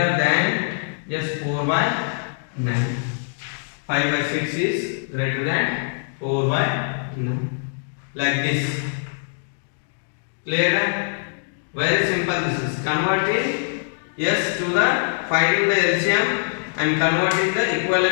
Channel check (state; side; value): silent; right; digital silence